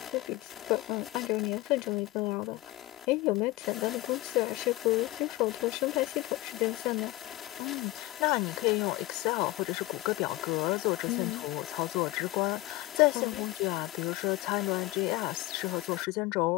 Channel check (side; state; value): right; quieter; 18.8 dB